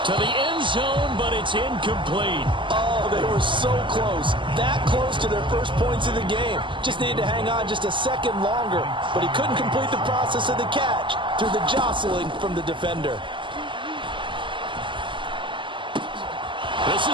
To the end zone, but it's incomplete. Oh, they were so close. That close to their first points of the game. Just needed to hang on just a second longer. But he couldn't complete the process of the catch through the jostling from the defender. This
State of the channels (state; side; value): late; left; 0.24 ms